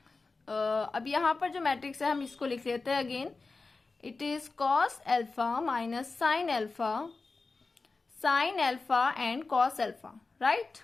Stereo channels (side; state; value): right; quieter; 3.9 dB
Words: अब यहाँ पर जो मैट्रिक्स है हम इसको लिख लेते हैं again. It is cos alpha minus sine alpha and cos alpha. Right,